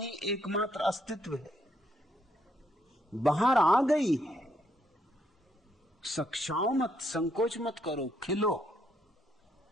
एकमात्र अस्तित्व है। बाहर आ गई है, सक्षाओ मत, संकोच मत करो, खिलो।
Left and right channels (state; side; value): normal; both; correlation 0.74